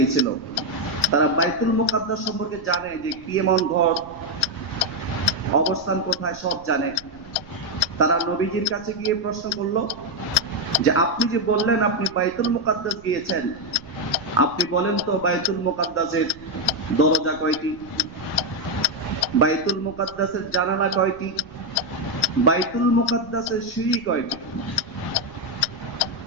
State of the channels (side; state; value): right; noise; rumble, 23 dB below the sound